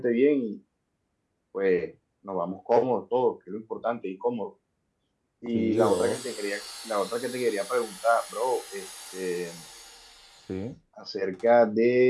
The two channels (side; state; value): both; identical; correlation 1.00